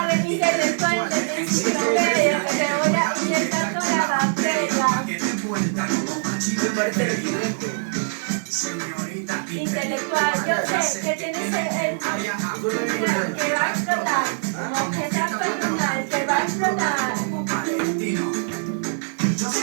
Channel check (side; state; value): left; silent; 63 dB below the other